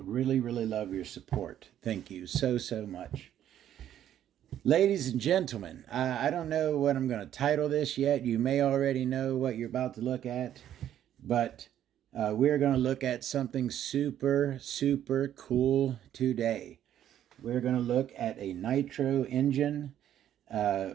really love your support. Thank you so much. Ladies and gentlemen, I don't know what I'm going to title this yet. You may already know what you're about to look at, but we're going to look at something super cool today. We're going to look at a nitro engine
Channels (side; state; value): left; quieter; 11.0 dB